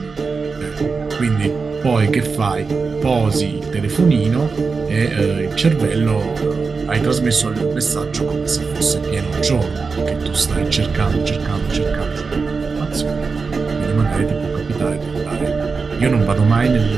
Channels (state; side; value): quieter; left; 4.7 dB